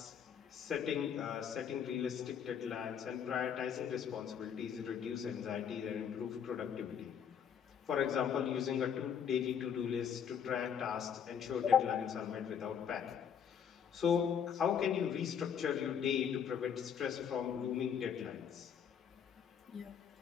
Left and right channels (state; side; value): quieter; right; 8.0 dB